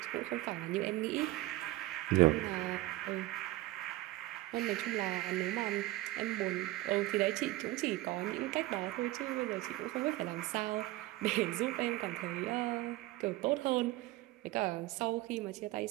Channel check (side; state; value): left; quieter; 18.0 dB